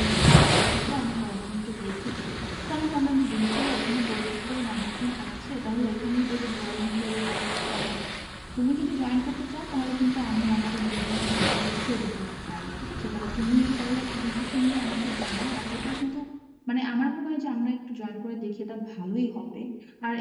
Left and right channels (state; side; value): identical; both; correlation 1.00